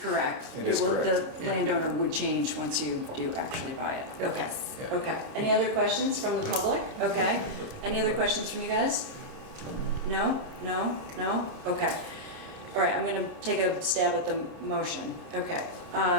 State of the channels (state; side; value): late; left; 30 ms